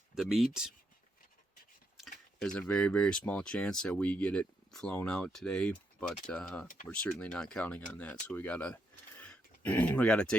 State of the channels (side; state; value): both; normal; correlation 0.79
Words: meat. There's a very, very small chance that we get it flown out today, but we're certainly not counting on that. So we gotta